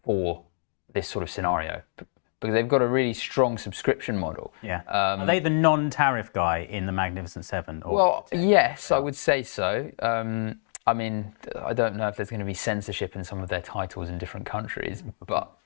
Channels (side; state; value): right; silent; digital silence